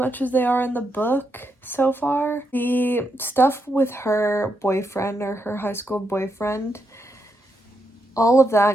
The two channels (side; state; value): both; normal; correlation 0.82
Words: as they are in the book so far. The stuff with her boyfriend, or her high school boyfriend, all of